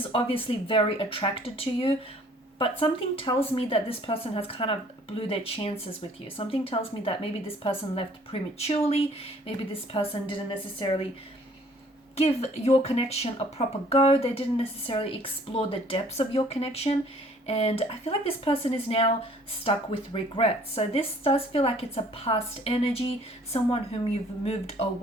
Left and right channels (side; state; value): both; normal; correlation 0.57